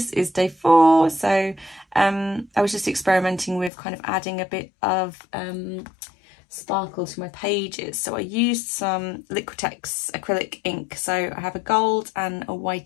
is day 4. So I was just experimenting with kind of adding a bit of sparkle to my pages. So I used some Liquitex acrylic ink. So I have a gold and a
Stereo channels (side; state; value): right; drops out; at 3.7 s